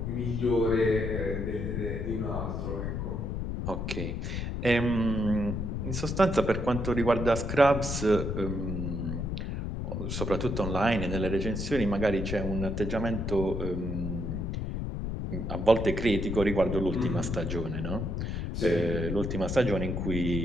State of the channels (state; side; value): noise; left; rumble, 3 dB below the sound